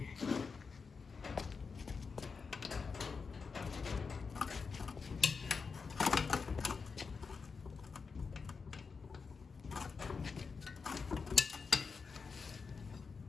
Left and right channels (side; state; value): right; quieter; 5.1 dB